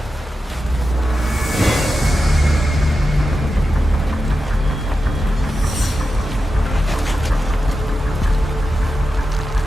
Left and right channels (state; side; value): normal; both; correlation 0.90